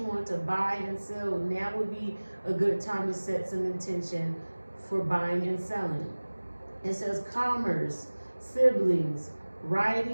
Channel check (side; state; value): both; inverted; correlation -1.00